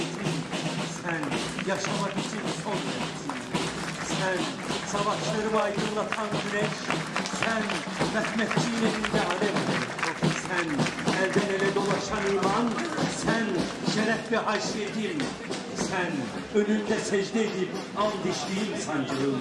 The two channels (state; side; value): identical; both; correlation 1.00